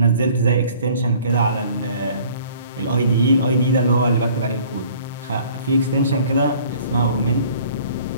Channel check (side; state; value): both; inverted; correlation -0.52